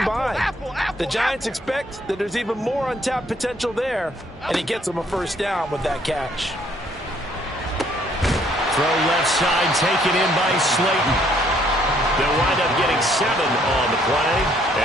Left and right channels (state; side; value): normal; both; correlation 0.65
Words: The Giants expect that there's even more untapped potential there, and he gets them a 1st down with that catch. Throw left side, taken in by Slayton. They'll wind up getting 7 on the play,